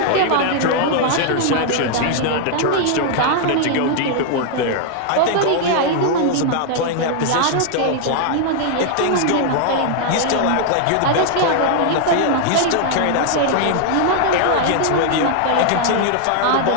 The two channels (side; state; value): both; different; correlation 0.00